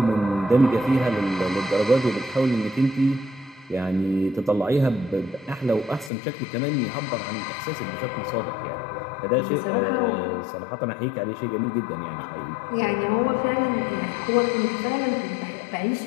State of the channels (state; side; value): drops out; right; at 6.1 s